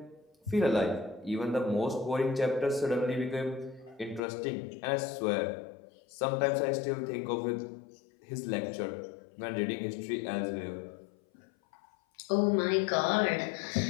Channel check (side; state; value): right; drops out; at 4.2 s